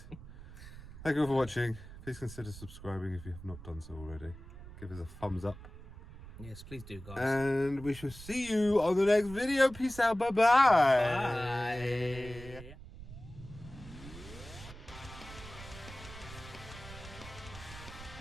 thank you all for watching. Please consider subscribing if you have not done so already. Give us a thumbs up. Yes, please do, guys. And we shall see you on the next video. Peace out. Bye-bye. Bye.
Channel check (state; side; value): noise; right; rumble, 15 dB below the sound